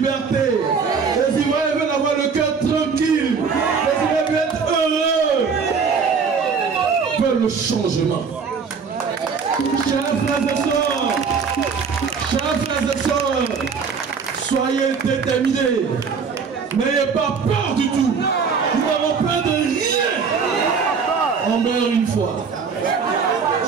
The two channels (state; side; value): quieter; left; 5.7 dB